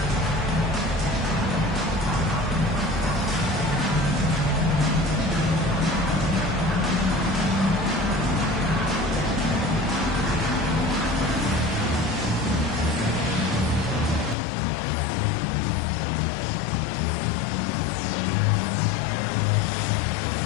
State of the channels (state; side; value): drops out; right; at 14.4 s